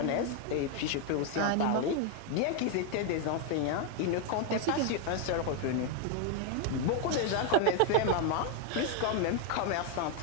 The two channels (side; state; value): both; different; correlation 0.01